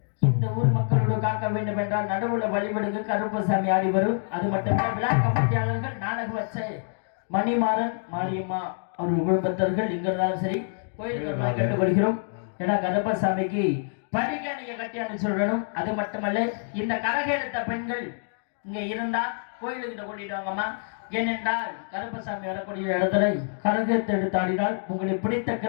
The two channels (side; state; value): right; silent; digital silence